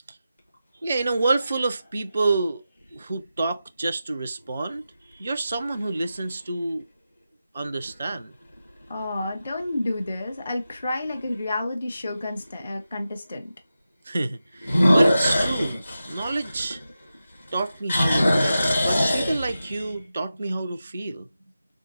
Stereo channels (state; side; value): inverted; both; correlation -0.91